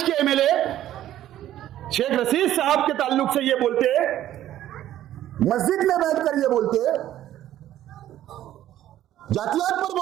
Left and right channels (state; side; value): quieter; left; 12.6 dB